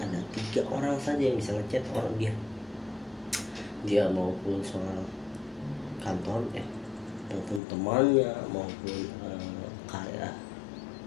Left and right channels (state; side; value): drops out; right; at 7.6 s